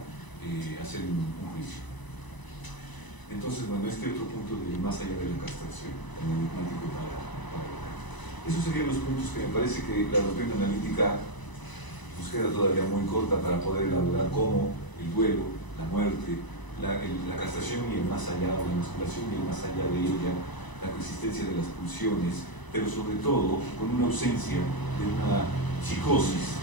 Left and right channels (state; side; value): late; right; 1.0 ms